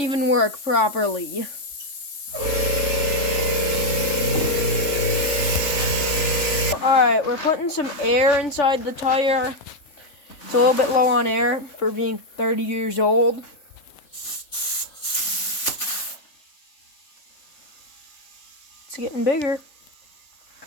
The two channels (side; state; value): right; late; 3.5 ms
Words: work properly. Alright, we're putting some air inside the tire. It's a little bit low on air for being 30 years old. It's getting bigger.